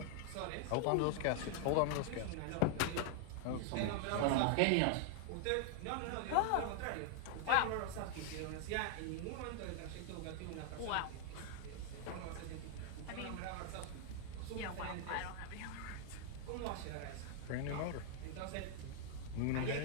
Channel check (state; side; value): different; both; correlation 0.00